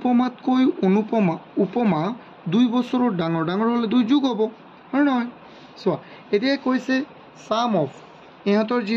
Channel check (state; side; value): identical; both; correlation 1.00